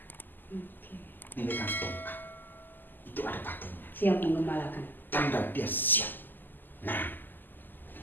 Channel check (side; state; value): right; late; 0.089 ms